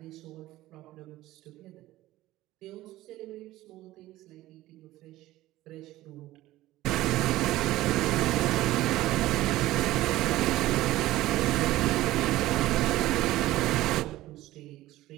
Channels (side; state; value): left; quieter; 16.3 dB